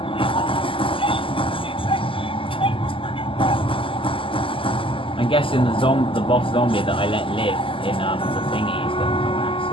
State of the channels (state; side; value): late; right; 0.25 ms